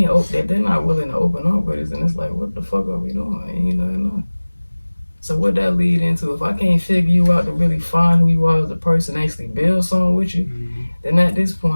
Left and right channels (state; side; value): inverted; both; correlation -1.00